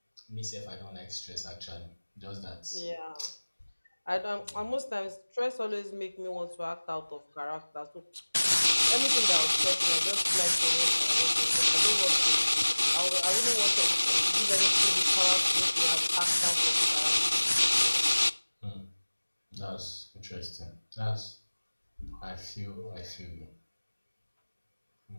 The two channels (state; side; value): inverted; both; correlation -1.00